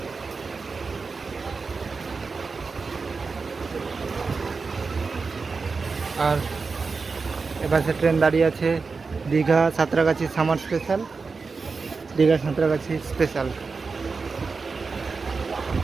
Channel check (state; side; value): quieter; left; 4.6 dB